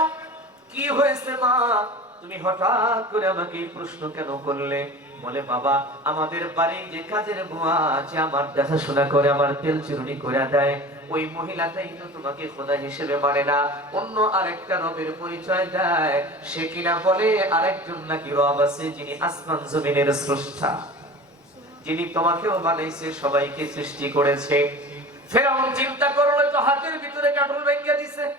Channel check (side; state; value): both; normal; correlation 0.36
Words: কি হয়েছে মা, তুমি হঠাৎ করে আমাকে এই প্রশ্ন কেন করলে? বলে বাবা আমাদের বাড়ি যে কাজের বুয়া আছে, আমার দেখাশোনা করে, আমার তেল চিরুনি করে দেয়, ওই মহিলাটাই তো তোমাকে খোদা হিসেবে মানে না, অন্য আরেকটা রবের পরিচয় দেয়। সে কিনা বলে আরেকজন নাকি রব আছে, যিনি আসমান জমিনের স্রষ্টা, যিনি তোমাকেও বানাইছে, সবাইকে সৃষ্টি করেছে। ফেরাউন চিন্তা করলো তো হাতের ভিতরে কাটল ভেঙে দিছে,